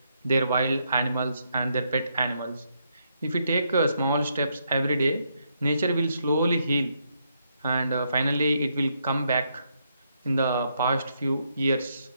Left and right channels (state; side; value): inverted; both; correlation -0.77